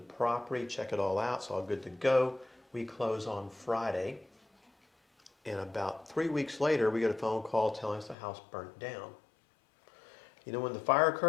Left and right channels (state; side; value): drops out; right; at 8.2 s